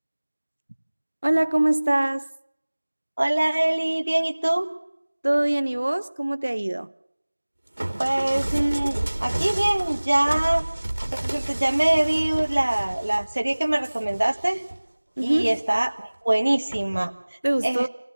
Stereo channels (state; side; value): inverted; both; correlation -1.00